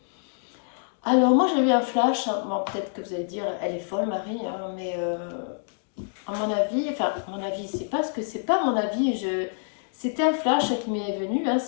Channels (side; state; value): right; silent; digital silence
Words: Alors moi j'ai eu un flash. Bon, peut-être que vous allez dire elle est folle Marie, hein, mais à mon avis, enfin à mon avis, c'est pas ce que c'est pas mon avis. C'était un flash qui m'est venu. Hein,